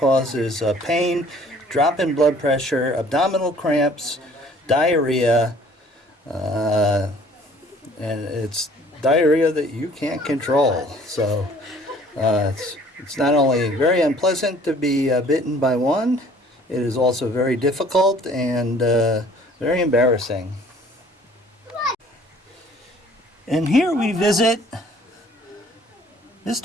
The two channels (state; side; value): normal; both; correlation 0.54